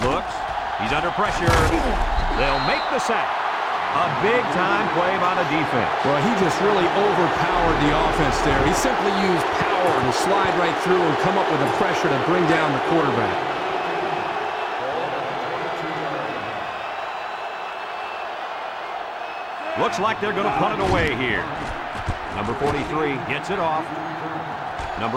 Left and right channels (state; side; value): identical; both; correlation 1.00